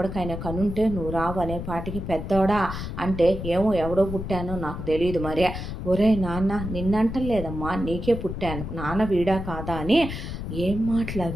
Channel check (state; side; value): noise; left; rumble, 7 dB below the sound